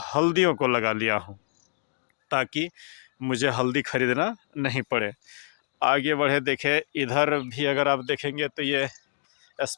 हल्दियों को लगा लिया हूँ, ताकि मुझे हल्दी खरीदना नहीं पड़े। आगे बढ़े, देखें इधर भी अगर आप देखेंगे तो ये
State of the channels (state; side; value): silent; right; digital silence